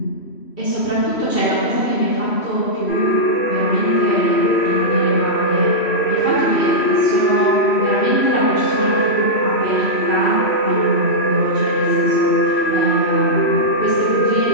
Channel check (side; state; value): right; late; 3.1 ms